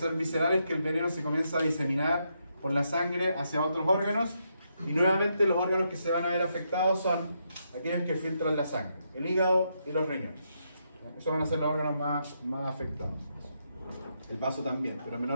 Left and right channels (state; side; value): inverted; both; correlation -0.80